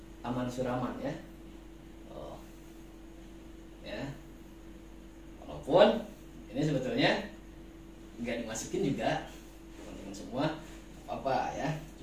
aman suraman ya. Ya. Walaupun ini sebetulnya nggak dimasukin juga teman-teman semua apa ya.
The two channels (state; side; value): identical; both; correlation 1.00